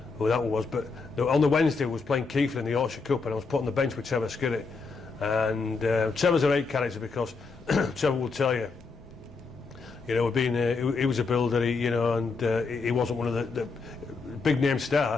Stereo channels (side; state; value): right; quieter; 4.4 dB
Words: who that was, but on the Wednesday I was playing Keighley in the Yorkshire Cup, and I was put on the bench with Trevor Skirrett. And Trevor's a great character, because Trevor will tell you, you know, he was a builder, and he wasn't one of the big name